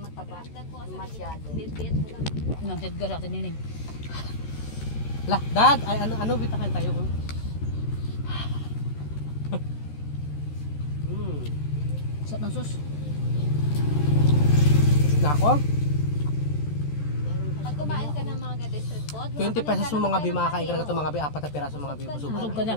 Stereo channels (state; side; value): late; right; 13 ms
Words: Masyado. bit-bit ko lang. Nanted ka sa atin yun. Lah, dad, ay ano bitakan tayo ko. Sarap ng sus. Na ako? Pag kumain ka ng mga ganito street food, 20 pesos mo mga bi, makakain ka na ito mga bi, 4 na piraso mga bi, busog Busog ka ka na.